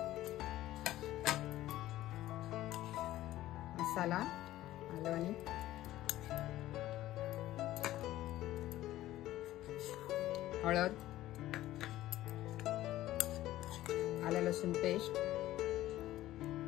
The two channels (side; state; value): right; quieter; 14.9 dB